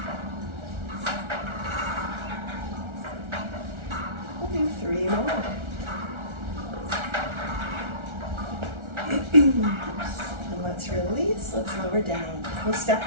We'll do 3 more. And let's release, let's lower down. We'll step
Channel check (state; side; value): late; left; 1.4 ms